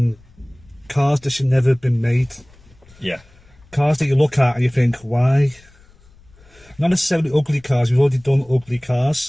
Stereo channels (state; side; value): noise; left; rumble, 28 dB below the sound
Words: cars that should never have been made. Yeah. Cars that you look at and you think, why? Not necessarily ugly cars. We've already done ugly